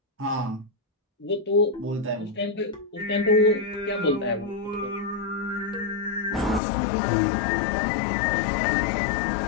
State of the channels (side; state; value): right; drops out; at 6.6 s